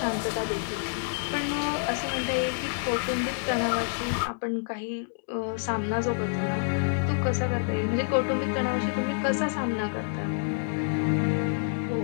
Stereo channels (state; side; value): silent; right; digital silence